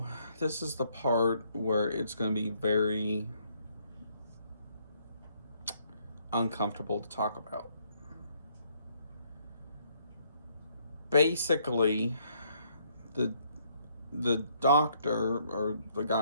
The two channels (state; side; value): inverted; both; correlation -0.69